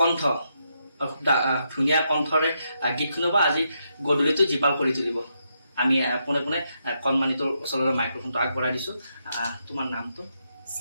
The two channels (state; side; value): inverted; both; correlation -0.80